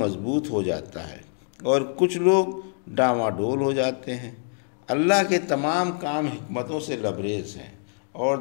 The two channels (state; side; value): silent; right; 62 dB below the other